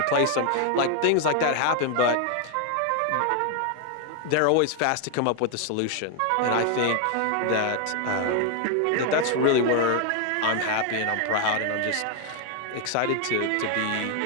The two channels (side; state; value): both; different; correlation 0.01